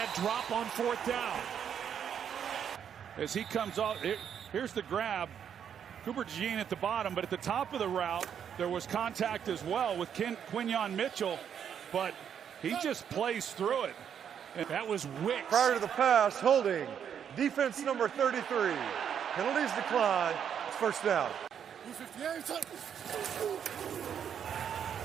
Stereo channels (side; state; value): left; quieter; 8.3 dB